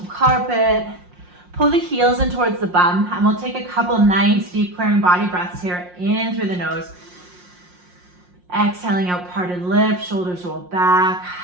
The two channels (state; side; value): late; left; 5.6 ms